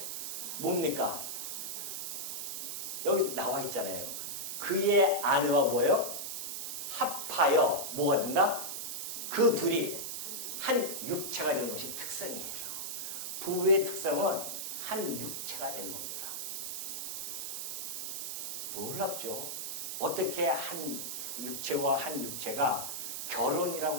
뭡니까? 여기 나와 있잖아요. 그의 아내와 뭐예요? 합하여 뭐가 된다? 그 둘이 한 육체가 되는 것이 특성이에요. 부부의 특성은 한 육체가 되는 겁니다. 놀랍죠? 어떻게 한 육체와 한 육체가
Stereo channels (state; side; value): noise; right; hiss, 4 dB below the sound